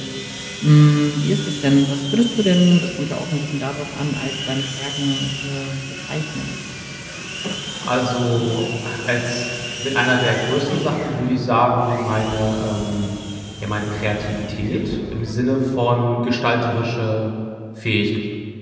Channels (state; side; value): identical; both; correlation 1.00